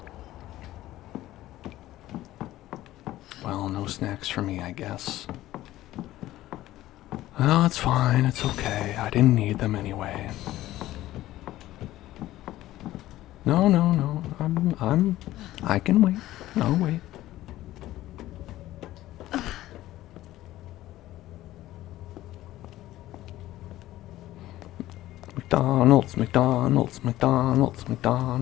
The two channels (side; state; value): right; quieter; 15.3 dB